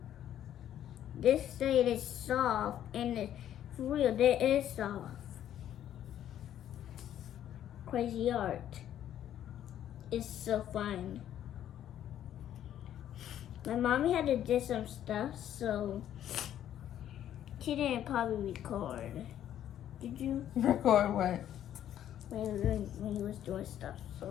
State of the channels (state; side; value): quieter; right; 11.0 dB